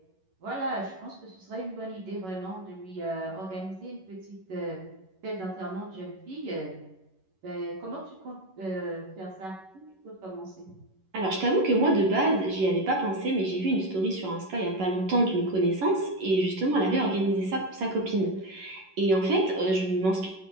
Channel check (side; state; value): left; late; 11 ms